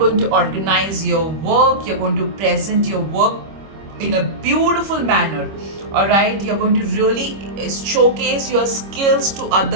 to organize your work. You're going to present your work in a beautiful manner. All right, you're going to really showcase your skills to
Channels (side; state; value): left; late; 25 ms